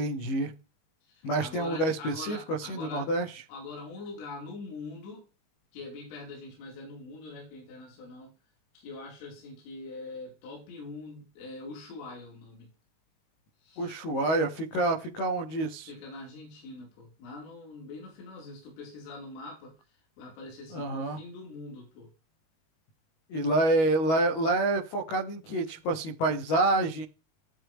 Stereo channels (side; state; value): right; late; 19 ms